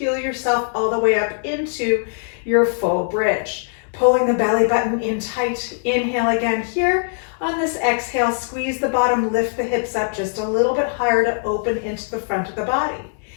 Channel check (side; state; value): right; silent; digital silence